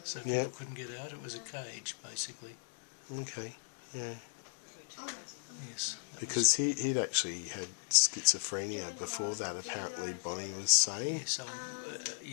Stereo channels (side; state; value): right; silent; digital silence